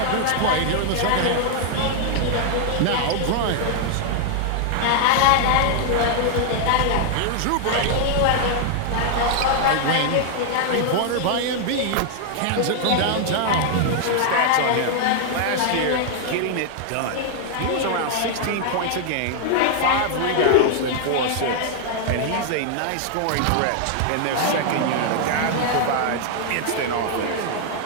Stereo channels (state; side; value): different; both; correlation 0.00